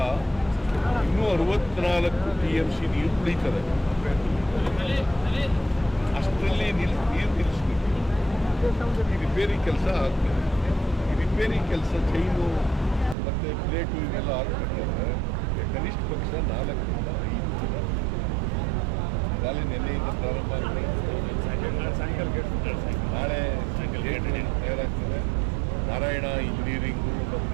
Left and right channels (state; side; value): drops out; left; at 13.2 s